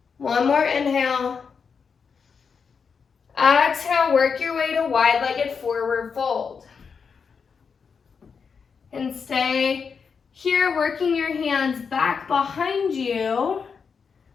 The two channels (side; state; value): right; quieter; 5.9 dB